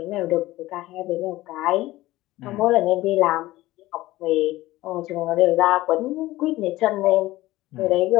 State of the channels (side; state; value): right; quieter; 17.4 dB